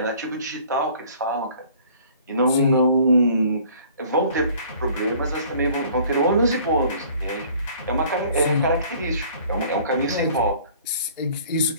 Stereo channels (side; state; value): both; inverted; correlation -0.53